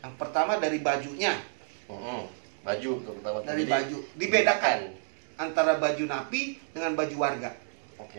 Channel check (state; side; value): silent; left; digital silence